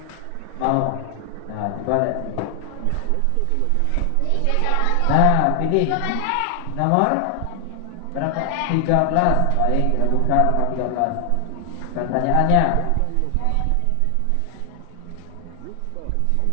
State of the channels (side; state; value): both; different; correlation 0.00